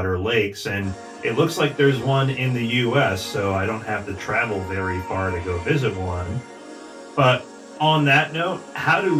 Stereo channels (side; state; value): both; identical; correlation 1.00